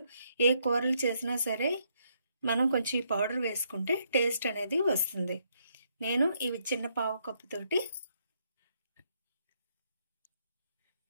ఏ కూరలు చేసినా సరే మనం కొంచెం ఈ పౌడర్ వేసుకుంటే టేస్ట్ అనేది వస్తుంది. నేను ఇవి చిన్న పావు కప్పు తోటి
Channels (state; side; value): inverted; both; correlation -0.75